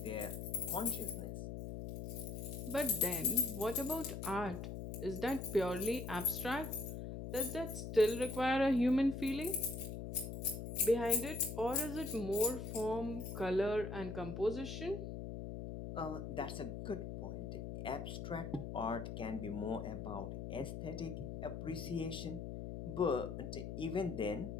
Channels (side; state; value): left; noise; hum, 6 dB below the sound